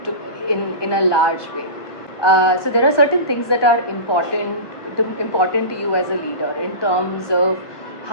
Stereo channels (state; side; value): late; right; 1.2 ms